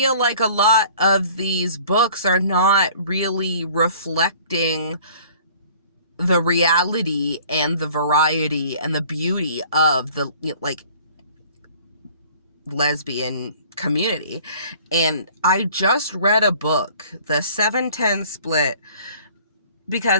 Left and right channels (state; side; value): inverted; both; correlation -0.51